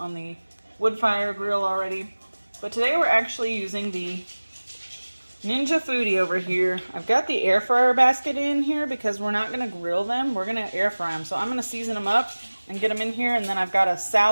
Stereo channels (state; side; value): inverted; both; correlation -1.00